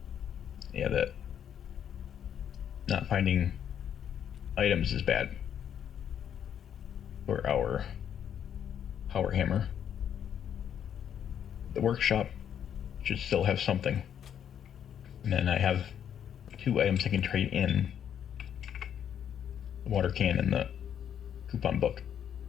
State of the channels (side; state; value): right; quieter; 9.1 dB